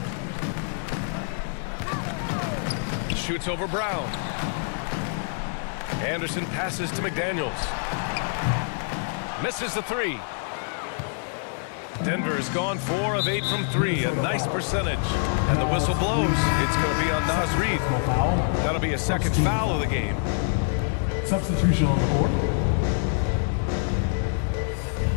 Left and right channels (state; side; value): silent; right; digital silence